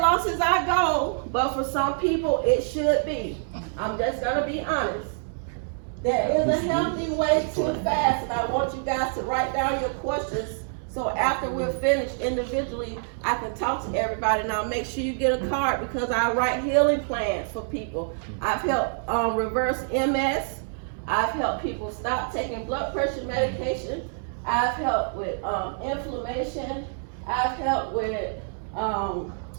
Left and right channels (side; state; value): left; silent; digital silence